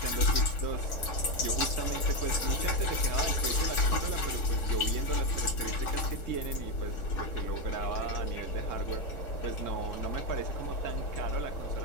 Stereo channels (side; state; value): right; late; 3.6 ms